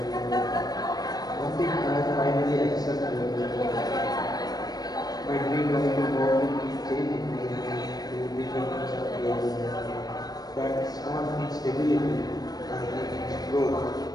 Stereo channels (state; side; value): late; right; 0.19 ms